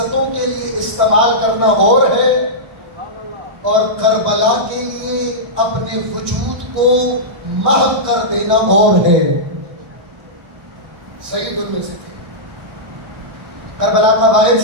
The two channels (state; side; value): late; left; 1.6 ms